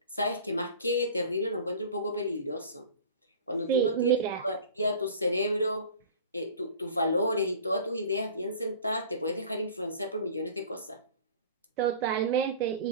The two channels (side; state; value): both; inverted; correlation -0.42